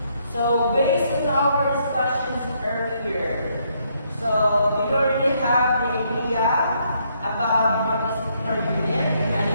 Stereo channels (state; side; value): inverted; both; correlation -0.72